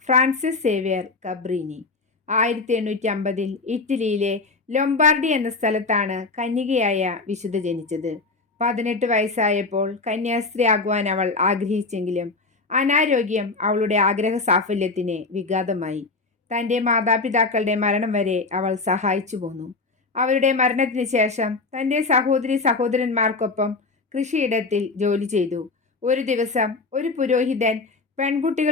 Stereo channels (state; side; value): quieter; right; 3.8 dB